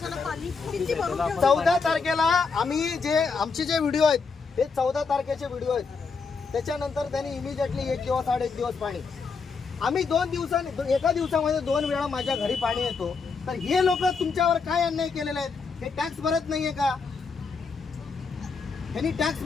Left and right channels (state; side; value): quieter; right; 4.9 dB